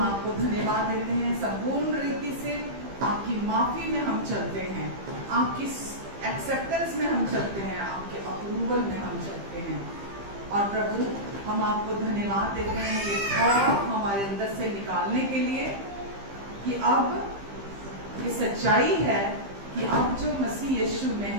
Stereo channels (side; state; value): left; late; 15 ms